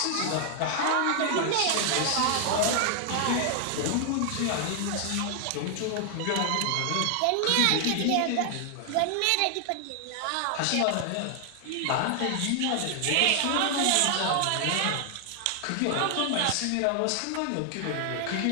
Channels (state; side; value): different; both; correlation 0.00